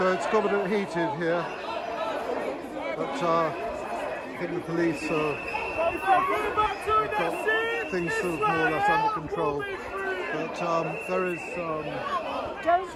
it's got a bit heated here, but I think the police have got things sort of more or less under control. But there is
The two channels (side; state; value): both; identical; correlation 1.00